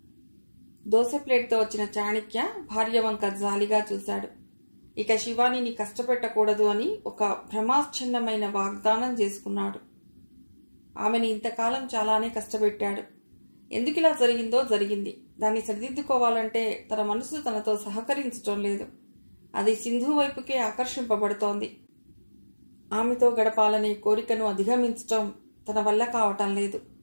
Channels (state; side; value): inverted; both; correlation -1.00